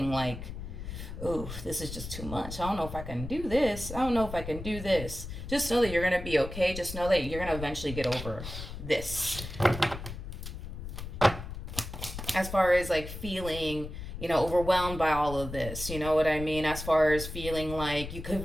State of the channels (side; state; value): left; noise; rumble, 9 dB below the sound